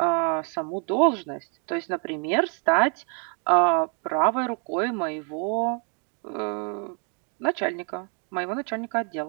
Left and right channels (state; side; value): quieter; left; 39.9 dB